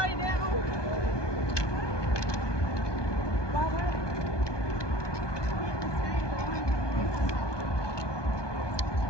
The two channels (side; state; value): right; late; 1.2 ms